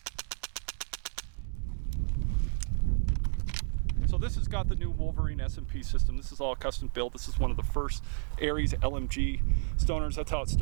So this has got the new Wolverine S&P system. This is all custom built. This is one of the first Aries LMG stoners. That's how it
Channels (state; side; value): silent; left; digital silence